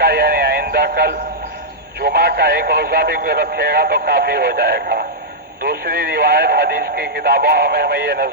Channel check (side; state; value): both; normal; correlation -0.08